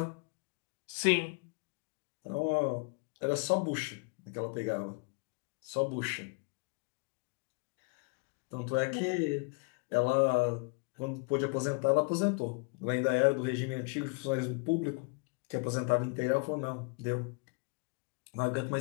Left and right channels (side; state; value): right; quieter; 30.6 dB